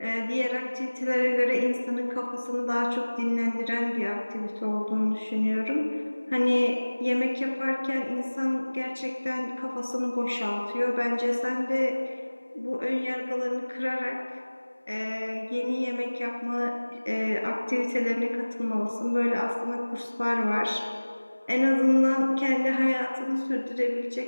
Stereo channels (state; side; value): inverted; both; correlation -1.00